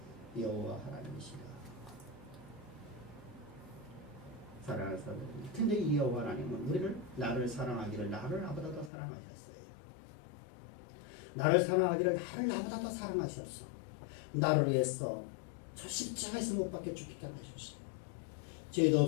여호와 하나님이시다. 사랑하는 사람들, 근데 이 여호와 하나님은 나를 사랑하기를 나를 나보다 더 사랑하셨어요. 나를 사랑하기를 나를 나보다 더 사랑하셨어. 나를 위해서 저 십자가에서 못 박혀 죽기까지 하셨어요. 죄도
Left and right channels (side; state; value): right; drops out; at 8.9 s